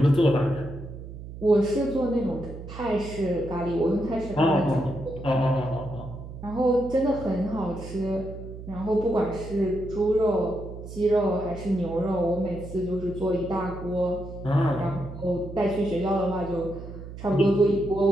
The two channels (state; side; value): noise; right; hum, 12 dB below the sound